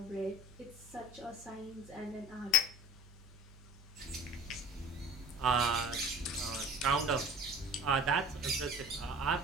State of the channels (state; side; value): normal; both; correlation 0.43